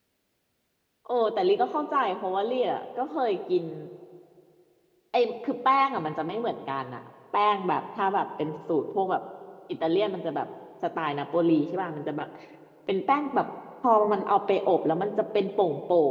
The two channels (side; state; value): both; identical; correlation 1.00